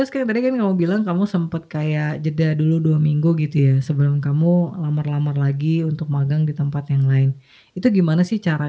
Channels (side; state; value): both; identical; correlation 1.00